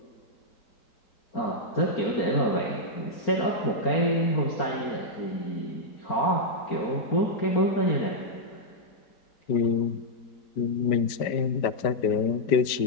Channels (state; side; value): late; right; 4.4 ms